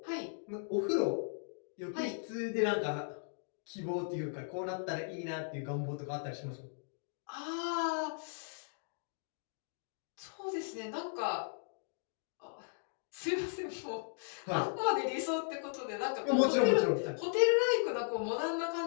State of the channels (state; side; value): silent; right; digital silence